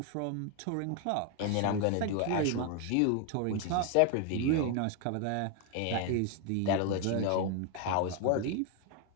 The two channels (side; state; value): both; different; correlation 0.01